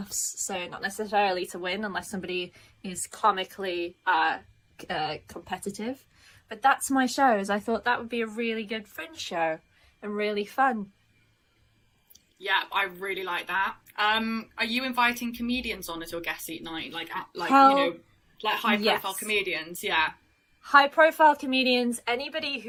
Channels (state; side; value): identical; both; correlation 1.00